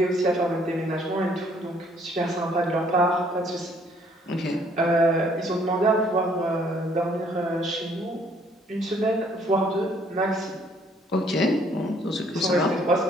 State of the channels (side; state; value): both; normal; correlation 0.63